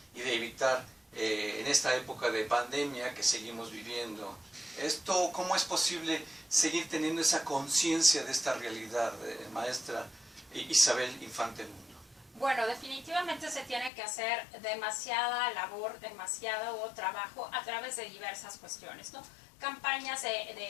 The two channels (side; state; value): right; drops out; at 13.9 s